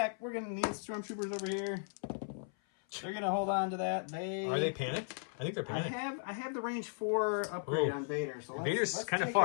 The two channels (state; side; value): silent; right; 54 dB below the other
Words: We're gonna need stormtroopers over here. They're gonna hold on to that. Are they panicked? I think they're panicked. I have the range 4 upgrade on Vader. So Vader's let's kind of take